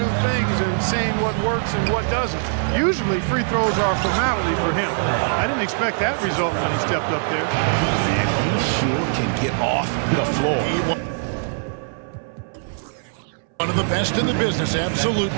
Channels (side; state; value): left; silent; 63 dB below the other